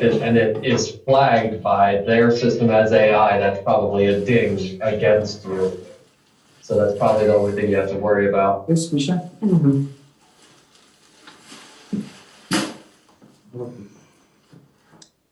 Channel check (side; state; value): both; identical; correlation 1.00